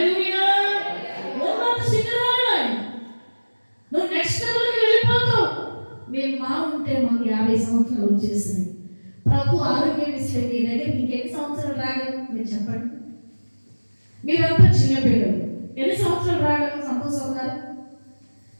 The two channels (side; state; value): both; inverted; correlation -1.00